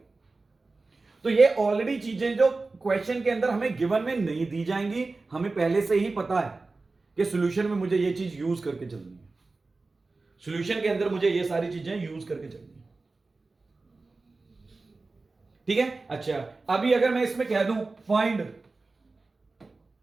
तो ये ऑलरेडी चीजें जो क्वेश्चन के अंदर हमें गिवन में नहीं दी जाएंगी, हमें पहले से ही पता है कि सॉल्यूशन में मुझे ये चीज यूज करके चलनी है, सॉल्यूशन के अंदर मुझे ये सारी चीजें यूज करके चलनी है। ठीक है, अच्छा अभी अगर मैं इसमें कह दूं फाइंड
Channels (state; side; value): quieter; left; 3.6 dB